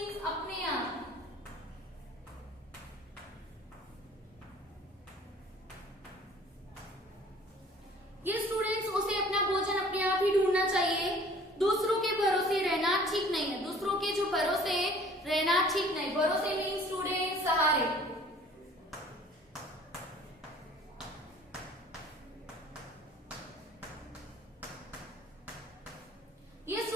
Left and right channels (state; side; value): normal; both; correlation 0.51